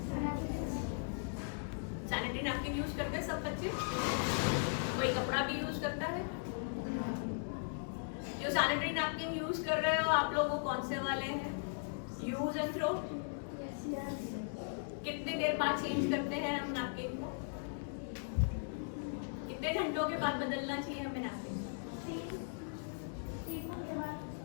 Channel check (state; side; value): silent; right; digital silence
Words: सैनिटरी नैपकिन यूज करते हैं सब बच्चे? कोई कपड़ा भी यूज करता है? जो सैनिटरी नैपकिन यूज कर रहे हो आप लोग वो कौन से वाले हैं? Use and throw? कितने देर बाद चेंज करते हैं हम नैपकिन को? कितने घंटों के बाद बदलना चाहिए हमें नैपकिन?